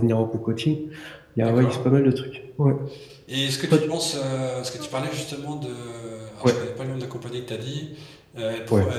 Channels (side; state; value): both; identical; correlation 1.00